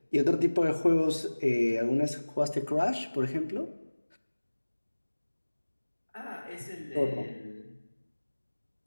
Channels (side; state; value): both; inverted; correlation -1.00